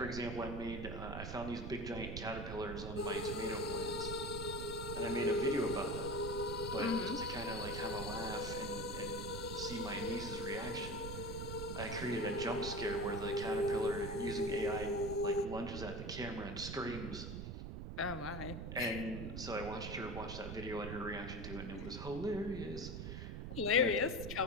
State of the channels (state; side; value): noise; right; rumble, 6 dB below the sound